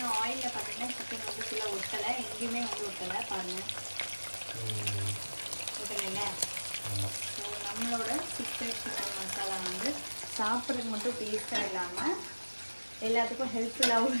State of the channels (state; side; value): inverted; both; correlation -1.00